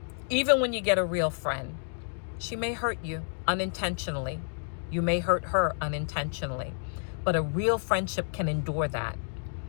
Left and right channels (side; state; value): right; silent; digital silence